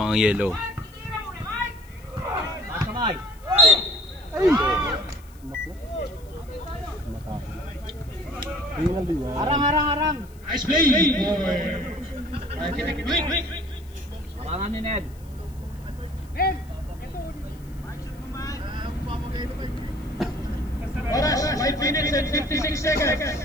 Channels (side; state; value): left; noise; hiss, 27 dB below the sound